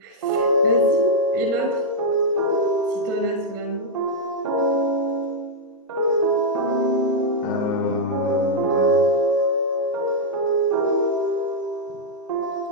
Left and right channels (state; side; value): normal; both; correlation -0.04